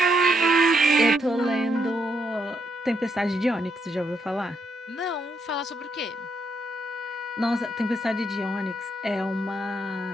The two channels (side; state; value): both; normal; correlation 0.77